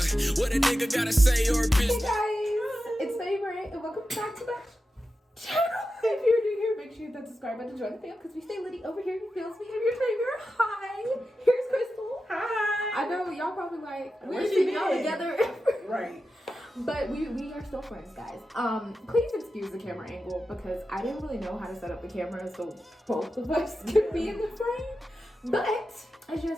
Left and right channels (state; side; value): normal; both; correlation 0.91